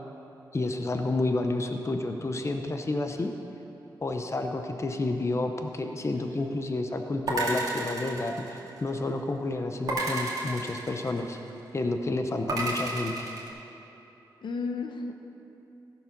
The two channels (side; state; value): both; normal; correlation 0.77